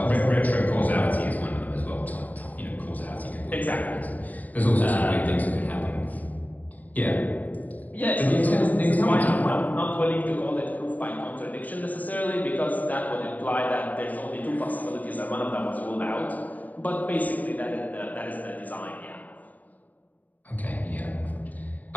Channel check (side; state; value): right; late; 0.077 ms